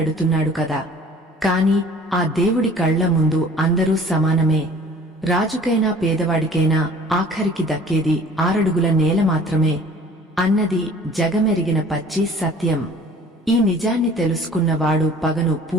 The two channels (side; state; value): both; normal; correlation 0.49